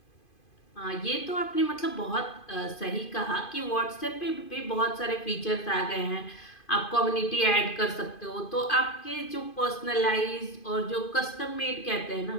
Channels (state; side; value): late; right; 2.5 ms